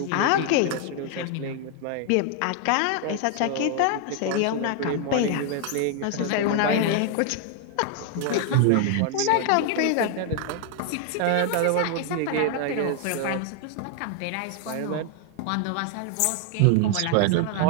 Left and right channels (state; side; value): different; both; correlation 0.00